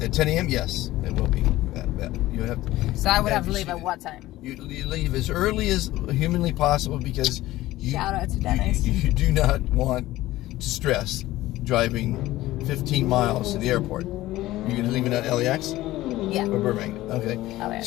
At 10 a.m., yes, it will be bad. You have to. So I would have to leave at what time? You leave as early as humanly possible because shout out to Dennis. You do not want to stress driving 15 miles to the airport. You're gonna leave it at LAX? Yeah. Or Burbank? Okay.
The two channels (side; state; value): right; quieter; 16.5 dB